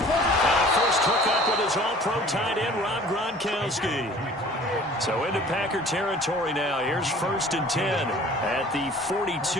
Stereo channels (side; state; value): both; normal; correlation 0.48